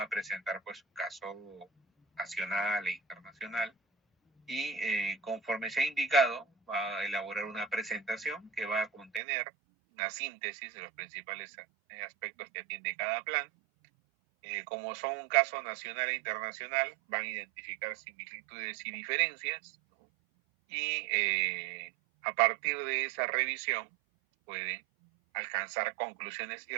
a presentar pues un caso nacional e internacional y conforme se ha indicado va a elaborar una presentación que va a contener una síntesis de los principales aspectos que atiende cada plan. Como son un caso nacional e internacional, van a identificar similitudes y diferencias, ¿no? Y a partir de esa revisión pueden alcanzar conclusiones y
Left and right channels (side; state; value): left; drops out; at 9.2 s